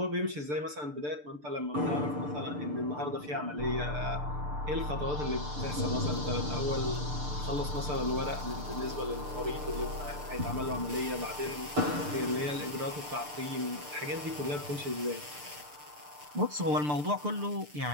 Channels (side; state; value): left; late; 6.8 ms